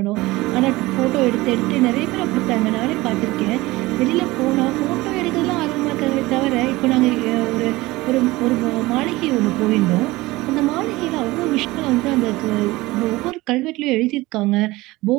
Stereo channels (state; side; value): quieter; left; 19.9 dB